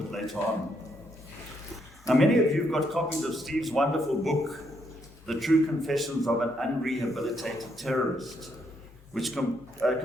later on. Now, many of you have got copies of Steve's wonderful book, The True Confessions of an Unrehabilitated Terrorist, which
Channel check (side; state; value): both; normal; correlation 0.75